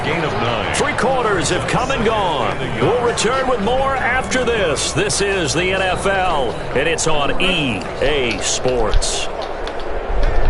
gain of 9. 3 quarters have come and gone. We'll return with more after this. This is the NFL, and it's on EA Sports.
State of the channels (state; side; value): identical; both; correlation 1.00